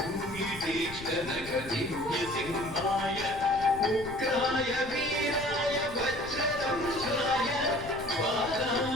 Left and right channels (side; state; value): left; noise; rumble, 14 dB below the sound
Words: दिव्यसिंहाय उग्राय वीराय वज्रदंष्ट्राय